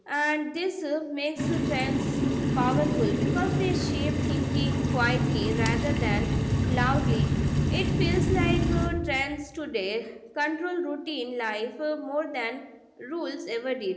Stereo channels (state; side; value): identical; both; correlation 1.00